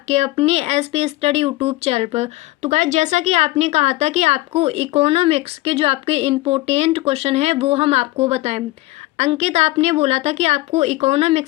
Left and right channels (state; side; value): quieter; right; 19.1 dB